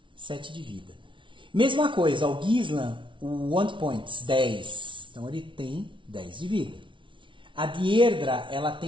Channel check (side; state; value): left; late; 0.24 ms